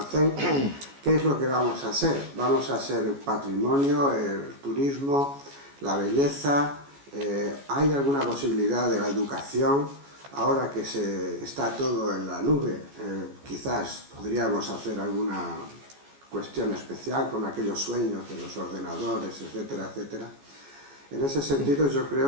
¿qué es lo que vamos a ser? Vamos a ser el patrimonio, el turismo, la belleza. ¿Hay alguna posibilidad de la educación? Ahora que está todo en la nube, quizás podríamos hacer alguna cuestión especial con aquellos sueños de los ordenadores, etcétera, etcétera. En ese sentido, yo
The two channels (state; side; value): late; left; 14 ms